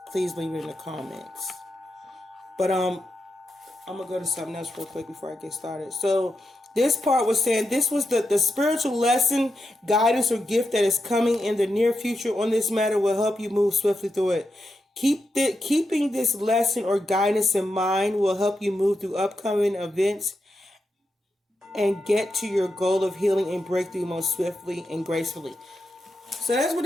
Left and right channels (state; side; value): normal; both; correlation 0.87